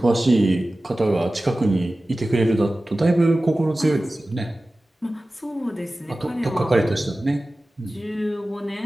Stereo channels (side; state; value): both; normal; correlation 0.96